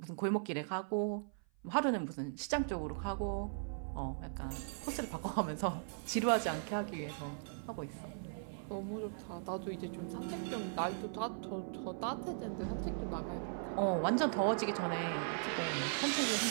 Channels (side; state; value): left; silent; 52 dB below the other